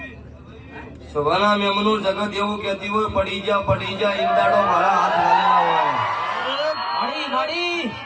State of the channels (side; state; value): both; identical; correlation 1.00